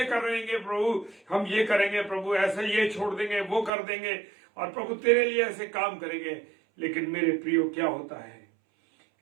करेंगे, प्रभु हम ये करेंगे, प्रभु ऐसा ये छोड़ देंगे, वो कर देंगे, और प्रभु तेरे लिए ऐसे काम करेंगे। लेकिन मेरे प्रियो, क्या होता है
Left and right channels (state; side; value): drops out; left; at 3.7 s